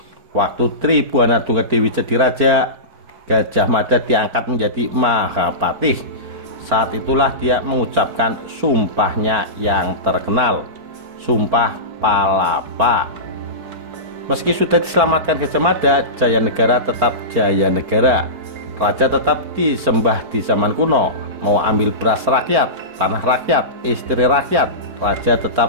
waktu Tribuana Tunggadewi jadi raja, Gajah Mada diangkat menjadi Mahapatih. Saat itulah dia mengucapkan sumpahnya yang terkenal, Sumpah Palapa. Meski sudah diselamatkan Gajah Mada, Jayanegara tetap Jayanegara. Raja tetap disembah di zaman kuno. Mau ambil beras rakyat, tanah rakyat, istri rakyat, raja tetap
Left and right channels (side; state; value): left; late; 4.4 ms